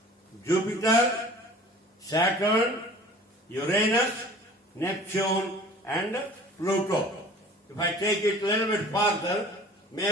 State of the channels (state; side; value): normal; both; correlation 0.46